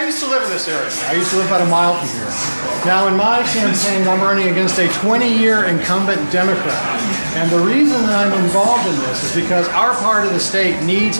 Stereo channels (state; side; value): inverted; both; correlation -1.00